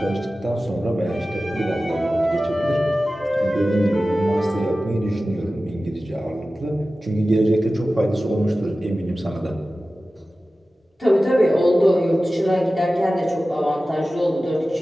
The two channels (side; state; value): both; normal; correlation 0.95